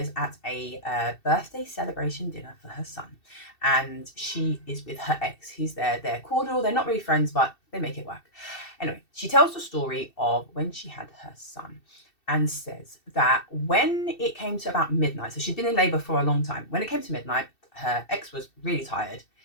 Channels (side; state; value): right; late; 2.7 ms